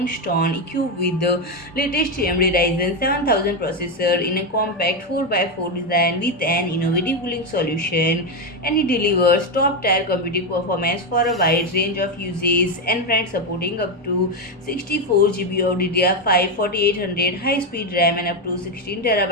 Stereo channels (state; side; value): normal; both; correlation 0.08